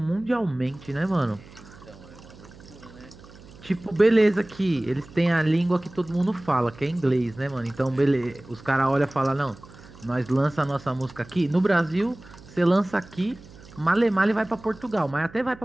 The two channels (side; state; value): right; noise; hum, 21 dB below the sound